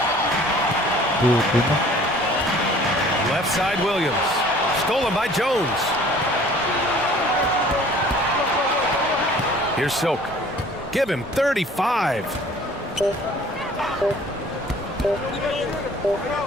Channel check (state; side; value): normal; both; correlation 0.51